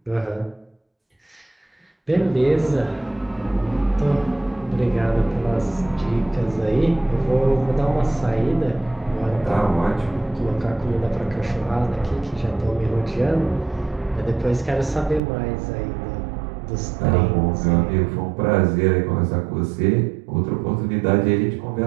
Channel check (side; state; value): left; drops out; at 15.2 s